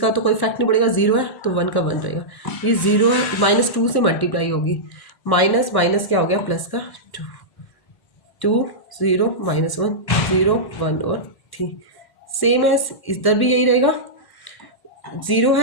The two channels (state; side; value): late; right; 1.1 ms